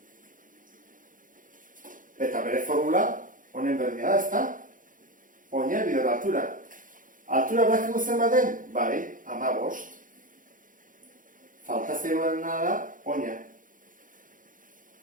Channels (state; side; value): late; left; 0.39 ms